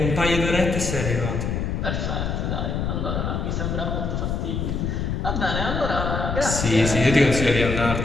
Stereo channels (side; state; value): left; noise; rumble, 1 dB below the sound